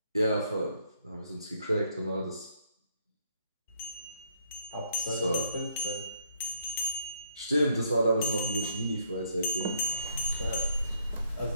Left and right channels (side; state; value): both; inverted; correlation -0.70